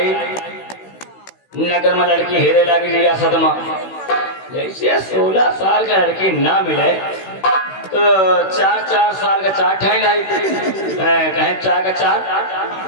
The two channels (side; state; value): right; late; 16 ms